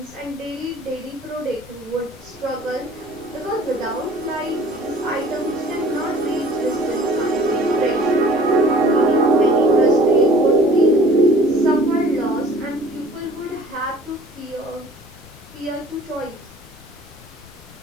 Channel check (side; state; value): left; noise; rumble, 25 dB below the sound